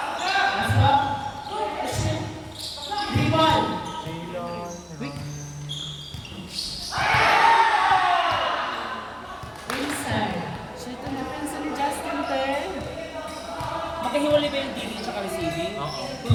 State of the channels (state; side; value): identical; both; correlation 1.00